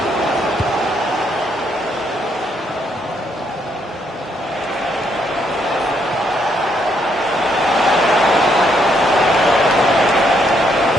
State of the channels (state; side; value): normal; both; correlation 0.73